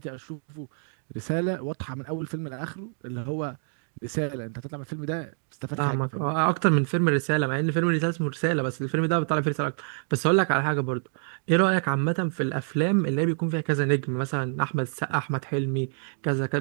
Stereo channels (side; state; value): left; silent; digital silence